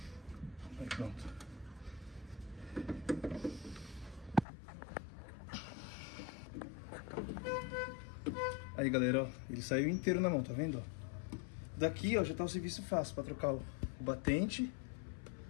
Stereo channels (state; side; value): drops out; right; at 4.5 s